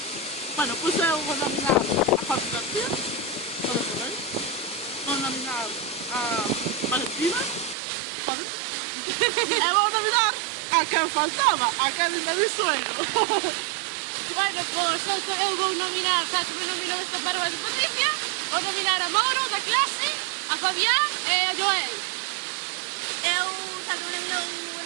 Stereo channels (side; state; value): left; drops out; at 7.8 s